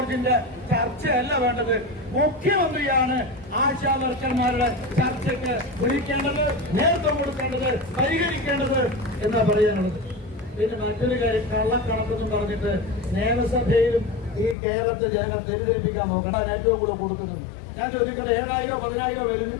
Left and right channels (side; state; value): right; drops out; at 14.6 s